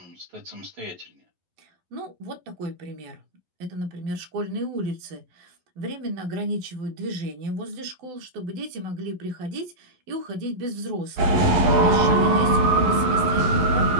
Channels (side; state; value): left; late; 11 ms